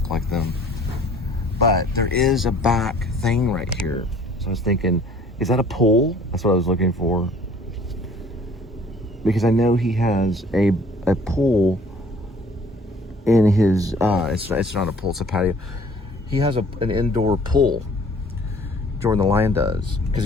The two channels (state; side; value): normal; both; correlation 0.54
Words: like them. But there is a back thing right here. So I was thinking, is that a pool? That's what I was looking for. Because I know he has a pool in his, it's not a pool, it's a patio. He has an indoor pool. Jordan the Lion does, because